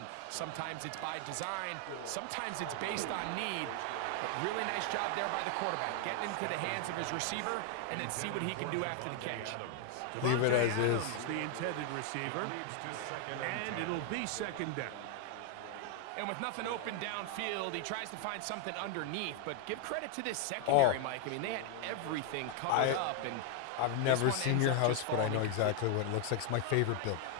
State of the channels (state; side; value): different; both; correlation 0.00